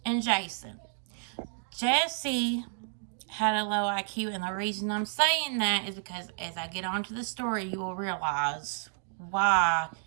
and Jason. Jesse had a low IQ, and the reason I'm saying that is because as I get onto the story, you will realize why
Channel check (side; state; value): left; silent; digital silence